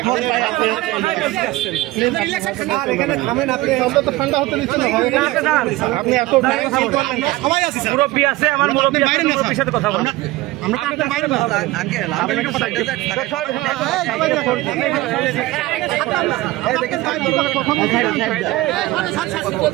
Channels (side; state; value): left; quieter; 18.7 dB